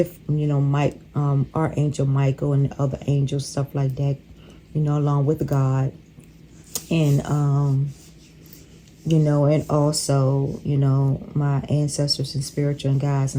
you know, Archangel Michael and other angels, stuff like that, you know, along with God. And you know, and also, you know, my ancestors and spiritual guides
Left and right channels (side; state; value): both; identical; correlation 1.00